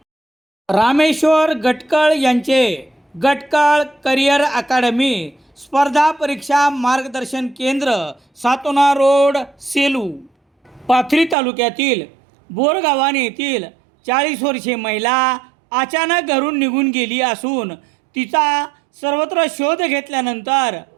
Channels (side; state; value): left; drops out; at 11.4 s